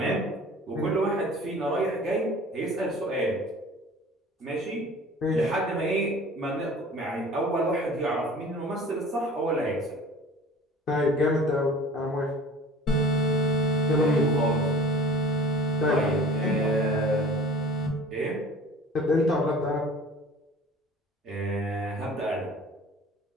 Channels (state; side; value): normal; both; correlation 0.44